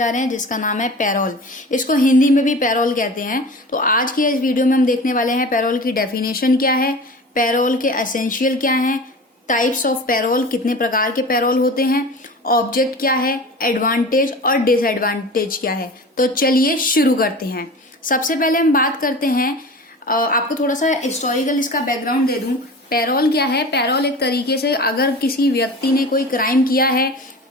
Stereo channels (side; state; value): both; normal; correlation 0.36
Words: रहे हैं जिसका नाम है पैरोल। इसको हिंदी में भी पैरोल कहते हैं। तो आज की इस वीडियो में हम देखने वाले हैं पैरोल की डेफिनेशन क्या है, पैरोल के एसेंशियल क्या हैं, टाइप्स ऑफ पैरोल, कितने प्रकार के पैरोल होते हैं, ऑब्जेक्ट क्या है, एडवांटेज और डिसएडवांटेज क्या है। तो चलिए शुरू करते हैं। सबसे पहले हम बात करते हैं, आपको थोड़ा सा हिस्टोरिकल इसका बैकग्राउंड दे दूं। पैरोल क्या है? पैरोल एक तरीके से अगर किसी व्यक्ति ने कोई क्राइम किया है